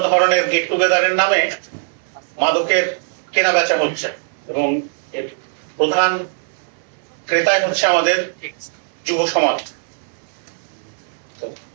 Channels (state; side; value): silent; left; digital silence